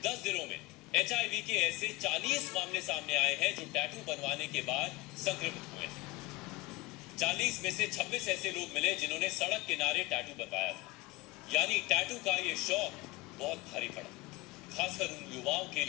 10 जिलों में एचआईवी के ऐसे 40 मामले सामने आए हैं जो टैटू बनवाने के बाद संक्रमित हुए। 40 में से 26 ऐसे लोग मिले जिन्होंने सड़क किनारे टैटू बनवाया था। यानी टैटू का ये शौक बहुत भारी पड़ा, खासकर उन युवाओं के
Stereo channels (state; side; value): quieter; right; 22.1 dB